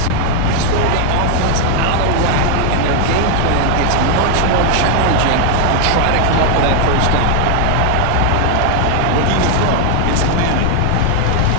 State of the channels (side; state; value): both; different; correlation 0.00